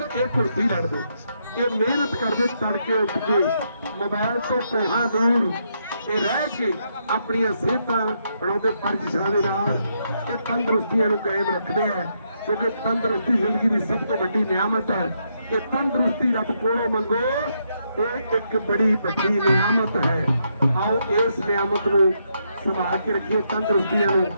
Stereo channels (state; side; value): inverted; both; correlation -0.78